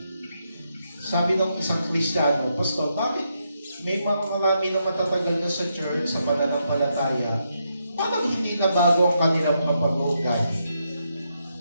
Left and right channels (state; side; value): inverted; both; correlation -0.81